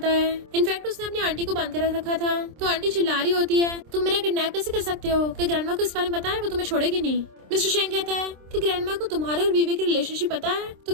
है। इनफैक्ट उसने अपनी आंटी को बांध कर रखा था। तो आंटी चिल्ला रही होती है तुम मेरा किडनैप कैसे कर सकते हो, कि ग्रैंडमा को इस बारे में पता है वो तुम्हें छोड़ेगी नहीं। मिस्टर शेंग कहता है कि ग्रैंडमा को तुम्हारे और वीवे की रिलेशनशिप पता है। तो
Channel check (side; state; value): left; late; 26 ms